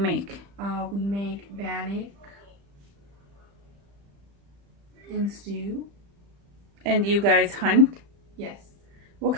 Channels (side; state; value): left; late; 35 ms